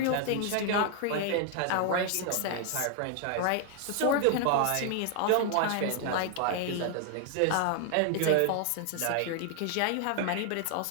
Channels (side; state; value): both; different; correlation 0.00